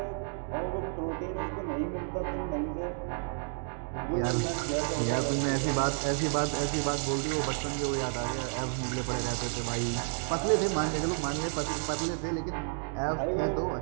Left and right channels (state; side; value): silent; left; 57 dB below the other